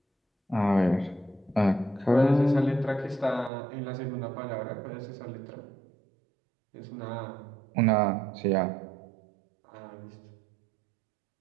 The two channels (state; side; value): drops out; left; at 3.5 s